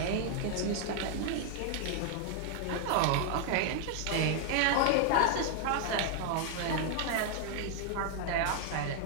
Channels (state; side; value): different; both; correlation 0.00